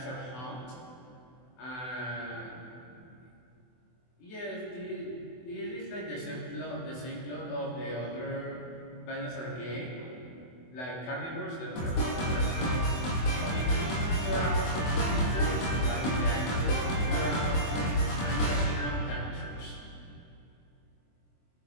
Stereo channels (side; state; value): right; late; 24 ms